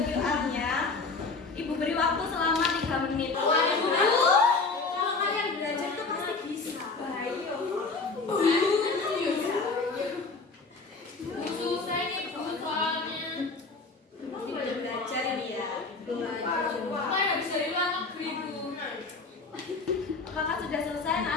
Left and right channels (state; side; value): quieter; right; 4.0 dB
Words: QR-nya. Ibu beri waktu selama 3 menit. Ibu, kalau kalian belajar itu pasti bisa. Baik. Susah nih, Bu, soalnya. Belum belajar ini ya. Mana bisa di luar negeri, Bu. Apakah sudah selesai